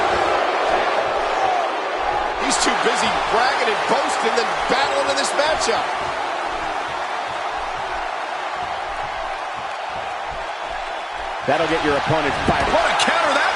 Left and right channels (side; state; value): both; identical; correlation 1.00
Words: He's too busy bragging and boasting than battling in this matchup. That'll get your opponent fired. What a counter that